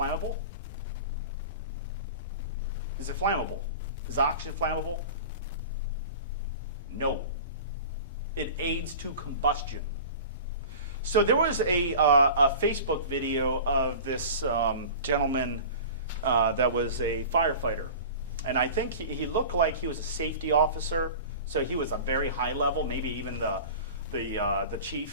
Is it flammable? Is oxygen flammable? No. It aids to combustion. So there was a Facebook video of this gentleman that was a firefighter. And I think he looked like he was a safety officer. So he was a very high level, maybe even the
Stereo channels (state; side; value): inverted; both; correlation -0.36